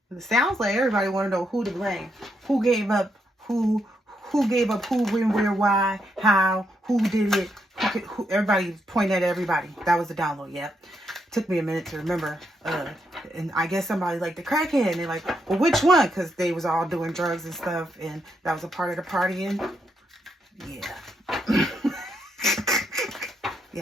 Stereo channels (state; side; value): normal; both; correlation 0.79